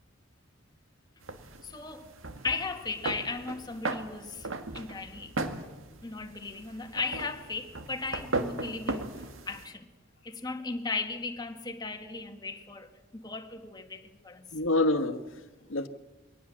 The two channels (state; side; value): normal; both; correlation -0.13